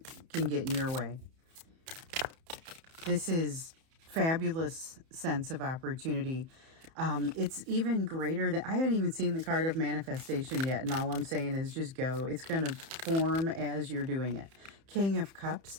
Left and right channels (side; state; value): left; late; 31 ms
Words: can get in your way. This is fabulous sense of opportunity. It's even greater than, I haven't even seen the card of manifestation yet, and all I'm saying is just go. It's going to form as you're doing it. King of Cups,